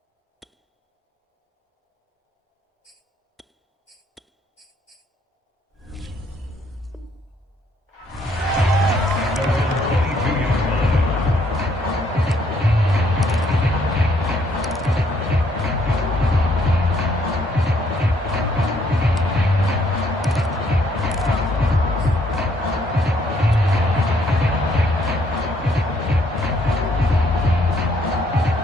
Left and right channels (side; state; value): both; normal; correlation 0.68